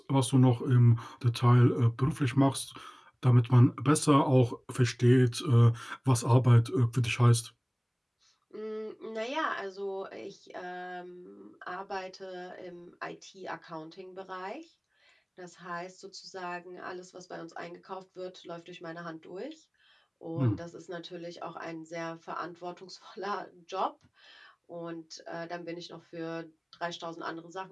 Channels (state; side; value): identical; both; correlation 1.00